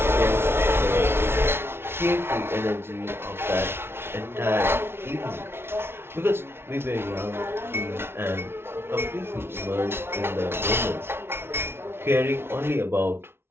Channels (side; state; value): left; late; 0.12 ms